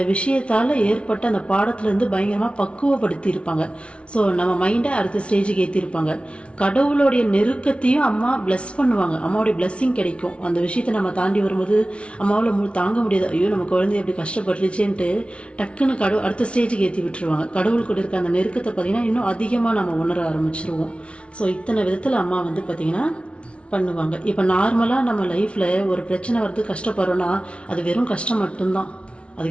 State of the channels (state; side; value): late; right; 0.060 ms